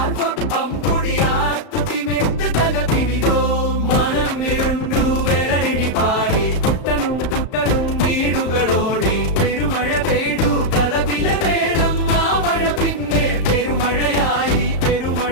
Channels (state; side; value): late; right; 35 ms